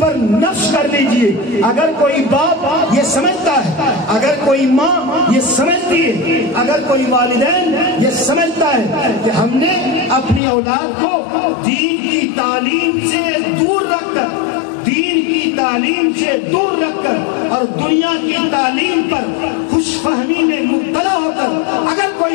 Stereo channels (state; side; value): drops out; right; at 10.4 s